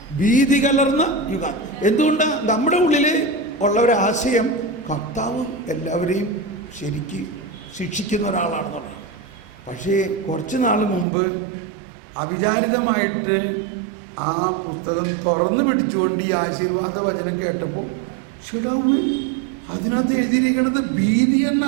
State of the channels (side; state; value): left; drops out; at 11.1 s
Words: ഭീതി കലർന്ന യുഗാന്ത്യം. എന്തുകൊണ്ടാണ്? നമ്മുടെ ഉള്ളിൽ ഉള്ള ഒരു ആശയം കർത്താവ് എല്ലാവരെയും ശരിക്ക് ശിക്ഷിക്കുന്ന ഒരാളാണെന്ന് പറയും. പക്ഷേ കുറച്ച് നാൾ മുമ്പ് അവിചാരിതമായിട്ട് ആ പുസ്തകം തുറന്നു പിടിച്ചുകൊണ്ട് ഈ ആശീർവാദ വചനം കേട്ടപ്പോൾ അതിനകത്ത് എഴുതിയിരിക്കുന്നത് ഭീതി